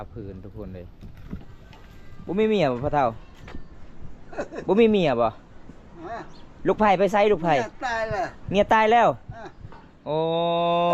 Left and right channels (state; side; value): identical; both; correlation 1.00